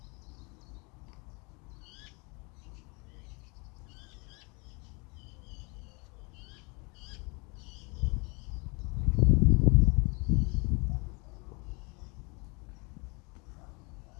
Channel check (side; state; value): right; quieter; 30.0 dB